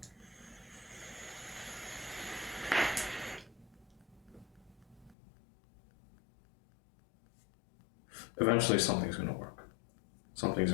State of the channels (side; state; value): right; drops out; at 5.2 s